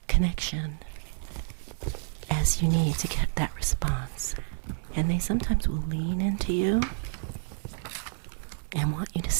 connection as you need to get that response. And they sometimes will lean into you and want you to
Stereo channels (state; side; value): silent; left; digital silence